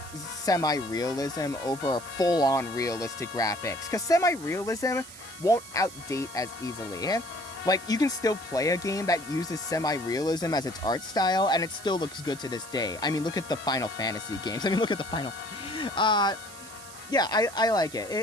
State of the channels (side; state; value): right; noise; hiss, 16 dB below the sound